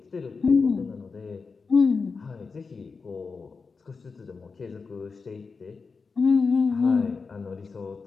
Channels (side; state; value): right; quieter; 4.7 dB